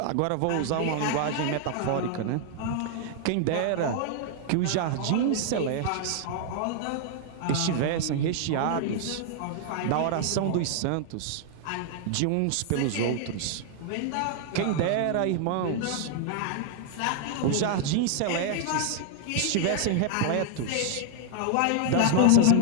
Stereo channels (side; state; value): both; different; correlation -0.01